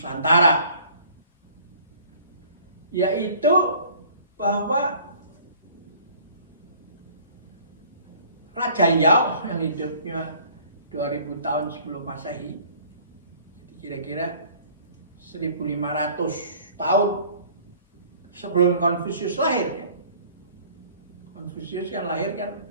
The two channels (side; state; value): both; inverted; correlation -0.52